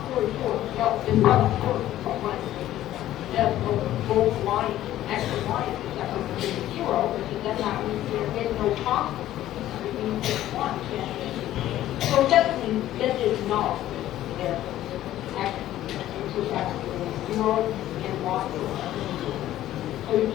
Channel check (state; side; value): quieter; right; 13.5 dB